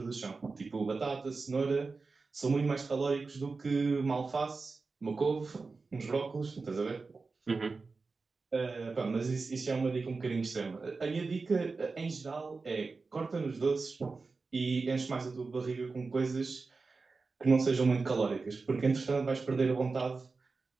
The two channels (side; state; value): left; quieter; 4.1 dB